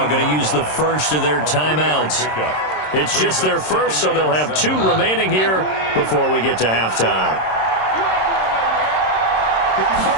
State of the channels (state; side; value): late; right; 26 ms